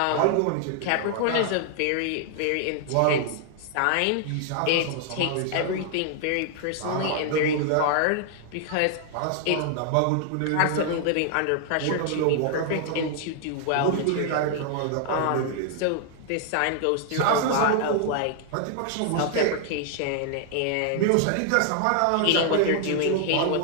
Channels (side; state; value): both; different; correlation 0.00